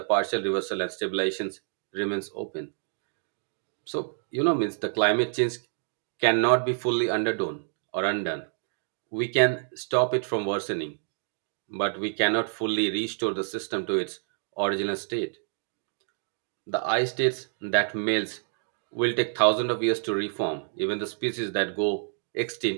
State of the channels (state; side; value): silent; left; digital silence